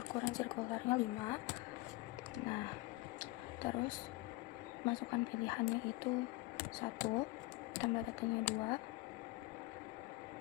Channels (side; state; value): right; quieter; 20.8 dB